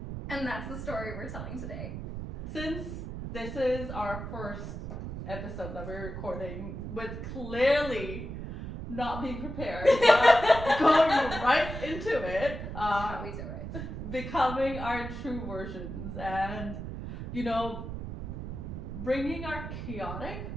And that's the story we're telling today. Since this is our first episode that we're recording with clearly not being prepared, but going right into it, That's how we do it. becoming our true versions, and bringing our chaotic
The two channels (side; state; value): right; noise; rumble, 7 dB below the sound